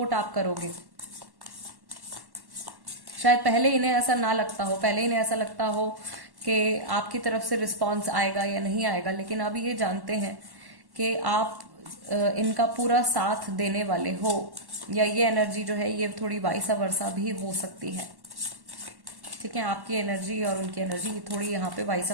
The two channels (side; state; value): left; late; 1.1 ms